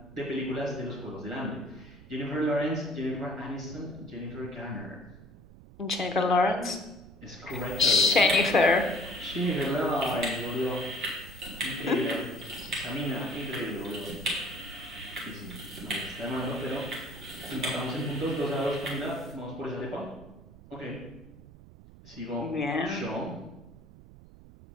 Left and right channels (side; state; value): right; noise; rumble, 20 dB below the sound